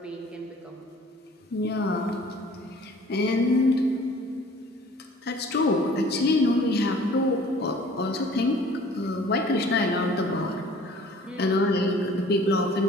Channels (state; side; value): normal; both; correlation 0.51